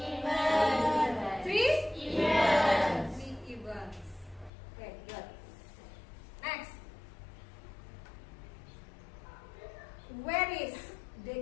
3? Events. 3 events. Okay, good. Next. Where is the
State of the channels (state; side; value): drops out; right; at 4.5 s